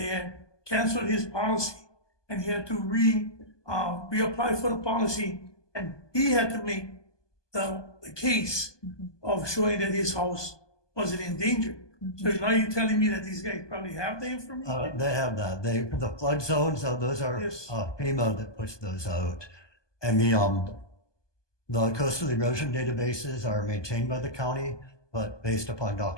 had canceled his policy, and he had to reapply for the policy, and he had to make the case of showing that his house wasn't in danger. So now you're telling me that these guys probably have the information? They have that. The flood zones, those are Yes. FEMA that puts those out. And the coastal erosion databases are maintained by the county, but based upon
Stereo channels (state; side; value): late; right; 1.2 ms